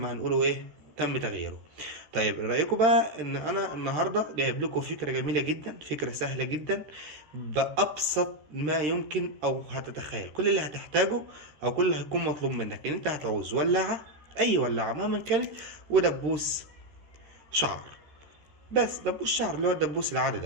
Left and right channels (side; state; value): left; late; 13 ms